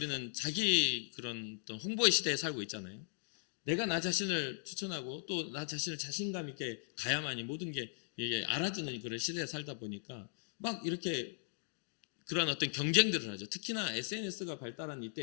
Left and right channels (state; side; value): silent; right; digital silence